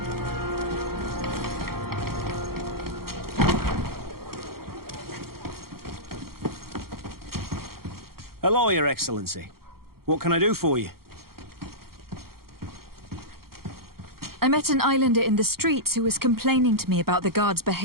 Hello, Your Excellency. What can I do for you? I met an islander in the streets who was complaining to me about the guard's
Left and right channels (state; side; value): late; left; 0.94 ms